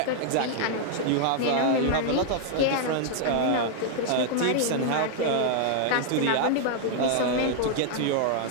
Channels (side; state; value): both; different; correlation 0.00